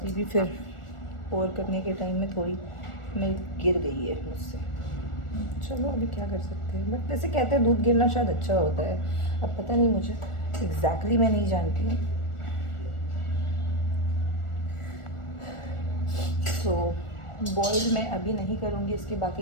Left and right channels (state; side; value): late; right; 1.4 ms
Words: भी फिर पोर करने के टाइम में थोड़ी मिल्क गिर गई है मुझसे। चलो अभी क्या कर सकते हैं, बट वैसे कहते हैं दूध गिरना शायद अच्छा होता है। अब पता नहीं, मुझे एग्जैक्टली मैं नहीं जानती हूँ। तो बॉईल मैं अभी नहीं करूँगी, इसके